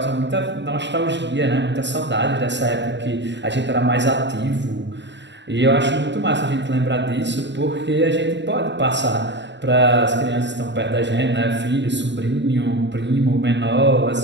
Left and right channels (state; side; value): late; left; 0.52 ms